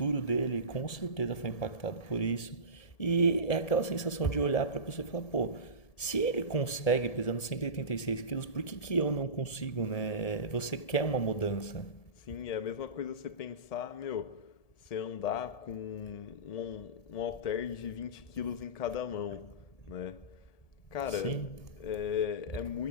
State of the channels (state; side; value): late; right; 1.7 ms